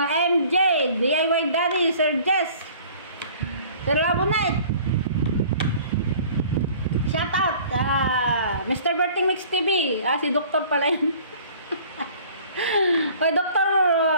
MJ, DIY Daddy, Sir Jess. Sir Labunet. Shoutout, Mr. Berting Mix TV. Si Doktor pala yun. Kay Dr.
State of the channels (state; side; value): inverted; both; correlation -0.50